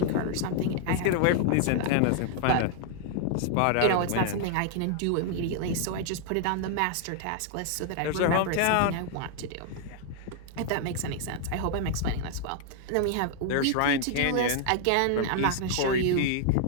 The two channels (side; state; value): both; different; correlation 0.00